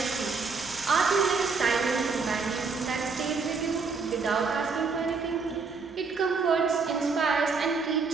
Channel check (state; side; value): quieter; left; 4.7 dB